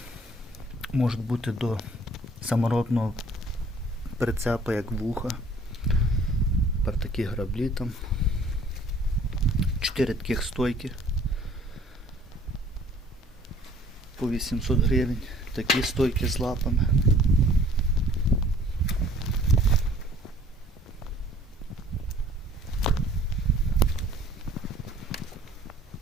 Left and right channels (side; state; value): both; normal; correlation 0.55